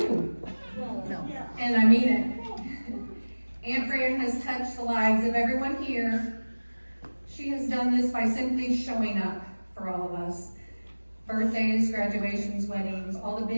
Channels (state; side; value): inverted; both; correlation -1.00